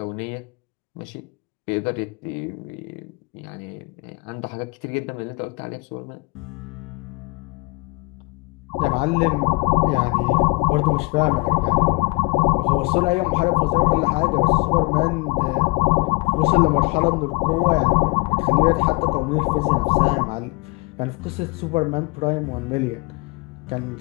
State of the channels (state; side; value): quieter; right; 27.6 dB